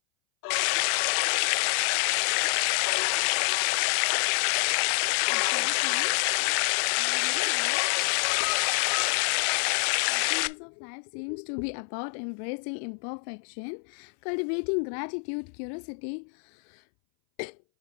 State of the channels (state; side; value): silent; right; 60 dB below the other